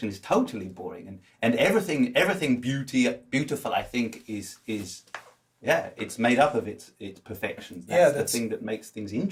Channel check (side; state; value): both; identical; correlation 1.00